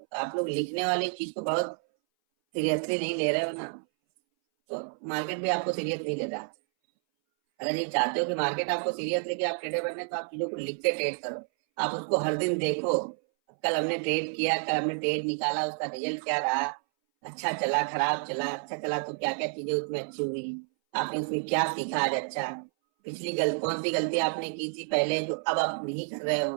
आप लोग लिखने वाली चीज को बहुत सीरियसली नहीं ले रहे हो ना, तो मार्केट भी आपको सीरियस नहीं ले रहा। अगर ये चाहते हो कि मार्केट आपको सीरियस लेके आप ट्रेडर बनने, तो आप चीजों को लिख के ट्रेड करो। आप उसको हर दिन देखो, कल हमने ट्रेड किया, कल हमने ट्रेड निकाला, उसका रिजल्ट क्या रहा, अच्छा चला, खराब चला, अच्छा चला तो क्या क्या चीजें उसमें अच्छी हुई, आपने उसमें क्या सीखा आज अच्छा, पिछली कौन सी गलती आपने की थी पहले जो अब आप नहीं कर रहे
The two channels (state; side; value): silent; left; 58 dB below the other